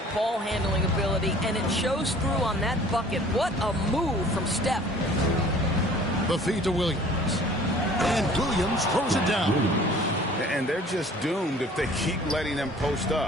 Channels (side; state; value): both; normal; correlation 0.50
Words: ball handling ability, and it shows through on that bucket. What a move from Steph. The feed to Williams. And Williams throws it down. And they're just doomed if they keep letting them post